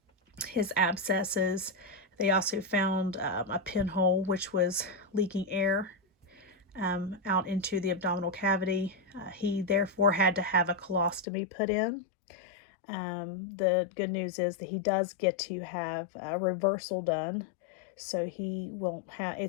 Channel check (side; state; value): right; drops out; at 11.2 s